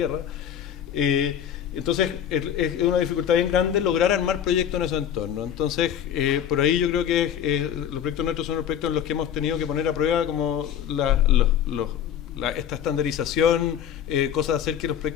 Entonces es una dificultad bien grande lograr armar proyectos en esos entornos. Entonces por ahí yo creo que los proyectos nuestros son los proyectos en los que hemos tenido que poner a prueba como esta estandarización, cosas de hacer que los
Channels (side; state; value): right; quieter; 9.4 dB